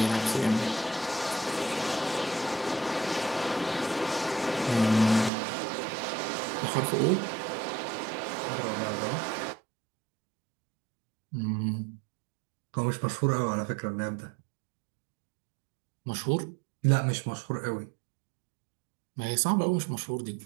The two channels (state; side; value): drops out; left; at 5.3 s